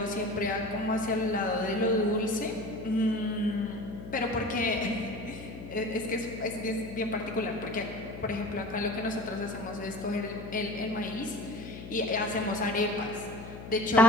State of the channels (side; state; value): left; noise; hum, 11 dB below the sound